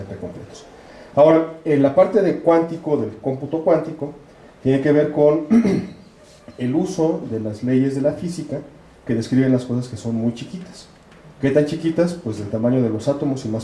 completos. Ahora, en la parte de cuántico, del cómputo cuántico, tiene que ver con el uso de las leyes de la física que describen las cosas que son muy chiquitas. ¿Qué tan chiquitas? Pues del tamaño de los átomos y más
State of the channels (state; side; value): identical; both; correlation 1.00